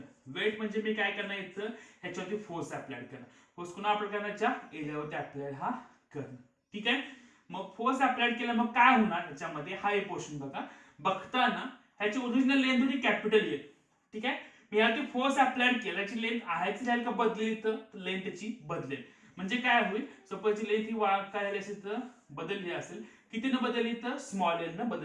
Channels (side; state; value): both; identical; correlation 1.00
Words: वेट म्हणजे मी काय करणार इथं ह्याच्यावरती फोर्स अप्लाय करणार. फोर्स कुणा अप्लाय करण्याच्या एरियावरती अप्लाय हा करणं. ठीक आहे, मग फोर्स अप्लाय केला मग काय होणार ह्याच्यामध्ये, हा एक पोर्शन बघा, बघताना ह्याची ओरिजिनल लेंथ होती कॅपिटल एल. ठीक आहे, मी यावरती फोर्स अप्लाय केला, याची लेंथ आहेच राहील का बदलेल, तर लेंथ त्याची बदलेल. म्हणजे काय होईल, सपोज लेंथ ही काय झाली असेल तर बदलली असेल, कितीनं बदलली तर स्मॉल एल न